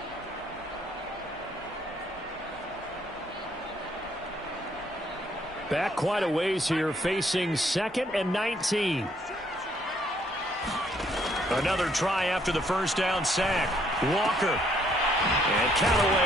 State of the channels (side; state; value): both; normal; correlation 0.68